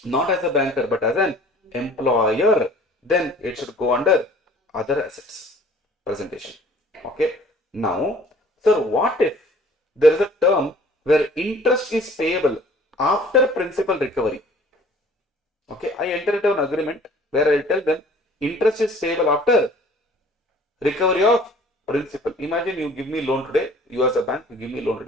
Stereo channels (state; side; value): normal; both; correlation 0.51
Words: not as a banker but as an employer, then it should go under other assets presentation. Okay. Now, sir, what if there is a term where interest is payable after principal recovery? Okay, I enter into an agreement where I tell them interest is payable after recovery of principal. Imagine you give me loan today, you as a bank, you give me loan